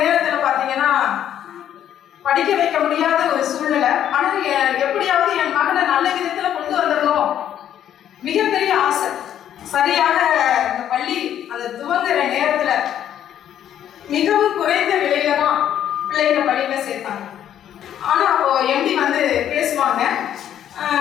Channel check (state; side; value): quieter; right; 10.4 dB